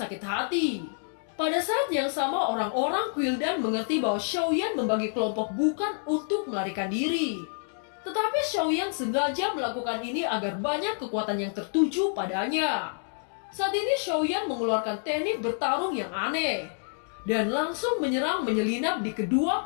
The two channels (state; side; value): silent; right; digital silence